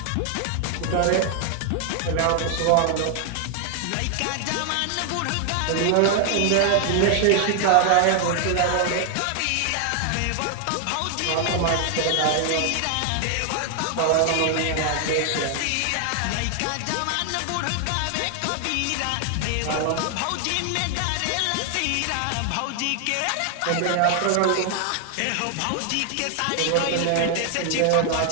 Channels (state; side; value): different; both; correlation 0.00